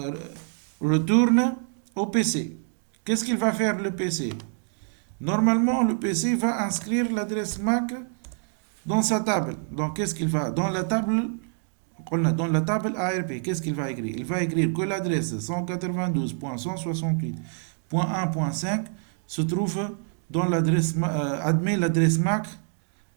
retourne au PC. Qu'est-ce qu'il va faire le PC? Normalement, le PC va inscrire l'adresse MAC dans sa table. Donc, qu'est-ce qu'il va? Dans la table ARP, qu'est-ce qu'il va écrire? Il va écrire que l'adresse 192.168.1.5 se trouve dans l'adresse, admet l'adresse MAC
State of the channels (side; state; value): left; silent; 61 dB below the other